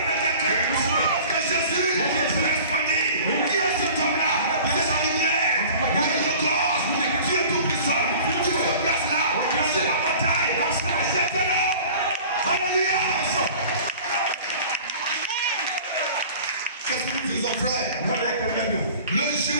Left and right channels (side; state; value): both; inverted; correlation -0.44